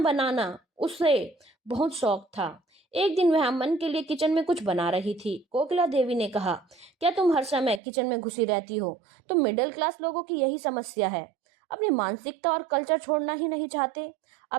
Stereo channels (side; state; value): left; drops out; at 7.8 s